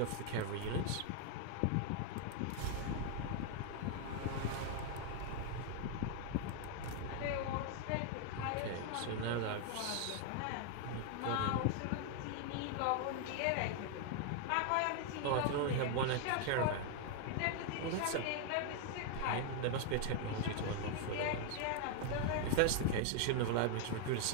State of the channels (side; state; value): both; different; correlation 0.00